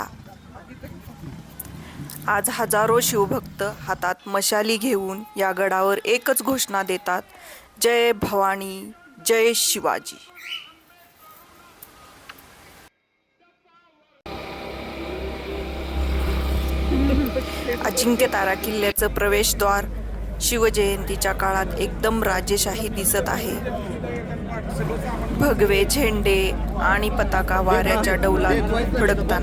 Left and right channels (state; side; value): identical; both; correlation 1.00